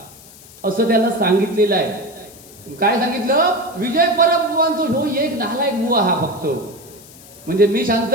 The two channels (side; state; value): left; noise; hiss, 21 dB below the sound